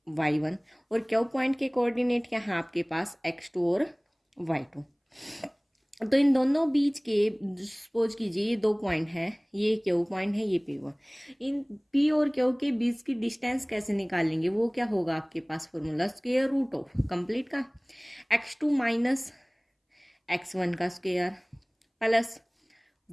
y1 और क्यू पॉइंट के कोऑर्डिनेट क्या है आपके पास x2 और y2। तो इन दोनों बीच के सपोज कीजिए ये दो पॉइंट है, ये क्यू पॉइंट है, ये पी वन। इन पी और क्यू के बीच की डिस्टेंस कैसे निकालेंगे, वो क्या होगा आपके पास formula, square root of complete का x2 माइनस x1 का square plus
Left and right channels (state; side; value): identical; both; correlation 1.00